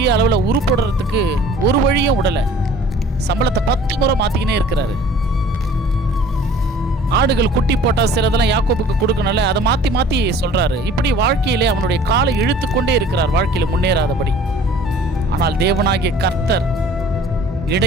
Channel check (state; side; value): normal; both; correlation 0.50